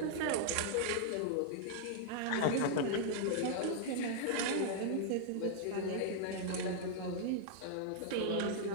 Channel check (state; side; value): different; both; correlation -0.01